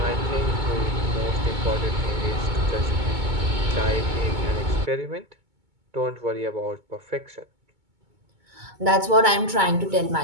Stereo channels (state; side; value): late; left; 2.2 ms